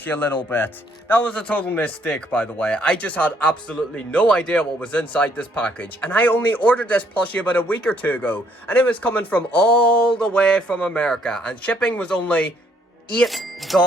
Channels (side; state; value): both; normal; correlation 0.67